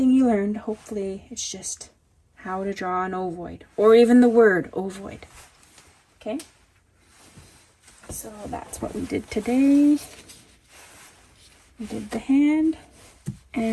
you learned, hopefully it's just how to draw an ovoid, or even the word ovoid. Okay? So that's what we did today. We did the hand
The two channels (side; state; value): both; identical; correlation 1.00